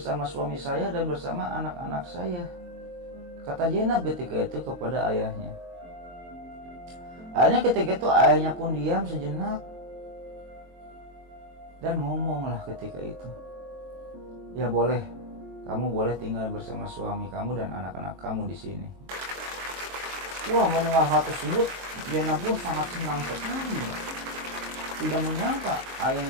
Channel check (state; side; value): late; left; 23 ms